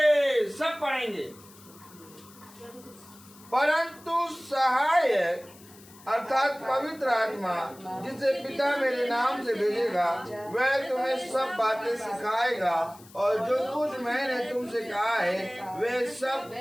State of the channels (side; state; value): left; noise; hiss, 23 dB below the sound